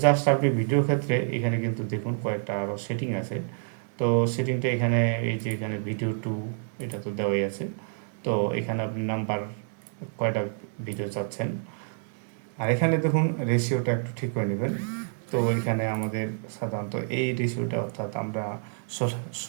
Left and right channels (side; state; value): left; silent; 59 dB below the other